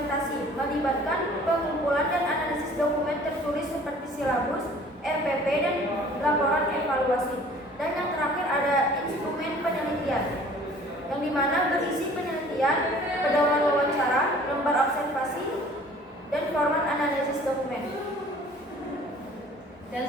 melibatkan pengumpulan dan analisis dokumen tertulis seperti silabus, RPP, dan laporan evaluasi. Dan yang terakhir ada instrumen penelitian, yang dimana berisi penelitian, pedoman wawancara, lembar observasi, dan format analisis dokumen. Dan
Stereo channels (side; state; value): both; normal; correlation 0.51